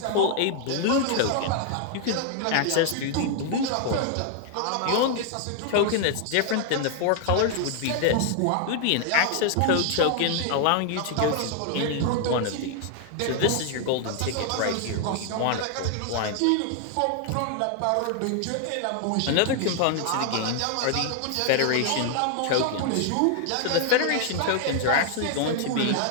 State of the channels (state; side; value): different; both; correlation 0.00